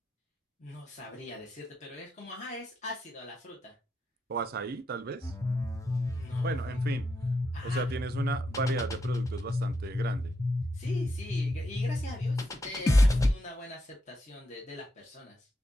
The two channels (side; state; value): both; normal; correlation 0.83